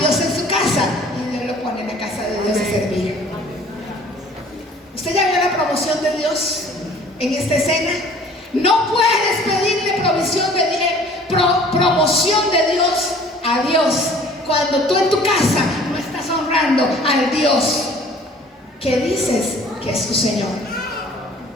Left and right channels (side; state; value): both; normal; correlation 0.51